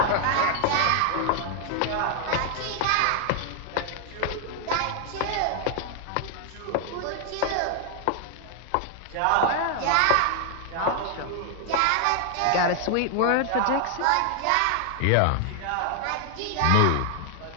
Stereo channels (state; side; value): different; both; correlation 0.00